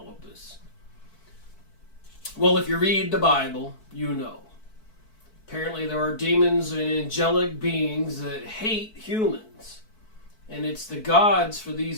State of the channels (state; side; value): late; right; 4.6 ms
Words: of this? Well, if you read the Bible, you know. Apparently there are demons and angelic beings that hate humans. And it's the gods for